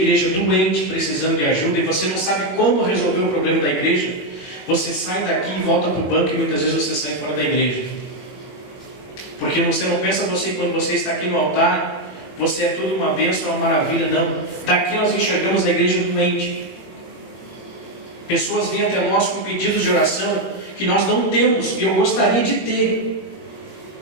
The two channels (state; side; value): late; right; 21 ms